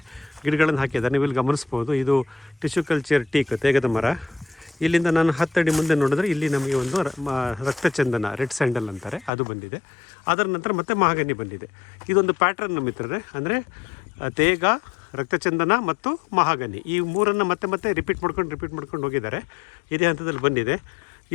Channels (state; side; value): drops out; right; at 9.3 s